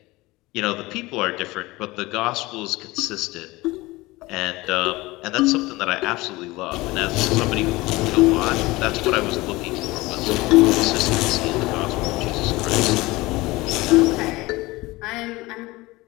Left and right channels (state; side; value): quieter; right; 20.9 dB